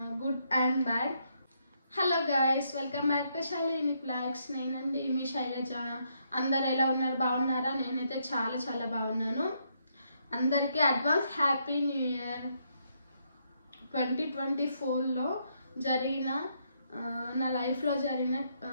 good and bad. Hello guys, welcome back to Shaileni blogs. నేనండి మీ శైలజ. అందరు ఎలా ఉన్నారు? బాగున్నారా? నేనైతే చాలా బాగున్నాను. అందరికీ అడ్వాన్స్ హ్యాపీ న్యూ ఇయర్. 2024లో జరిగిన నా లైఫ్లో జరిగిన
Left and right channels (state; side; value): inverted; both; correlation -0.75